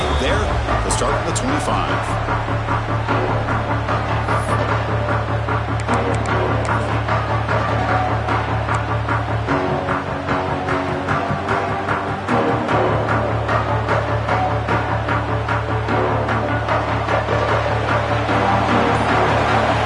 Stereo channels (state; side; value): identical; both; correlation 1.00